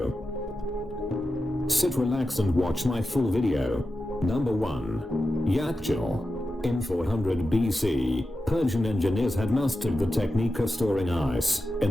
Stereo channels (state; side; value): normal; both; correlation 0.91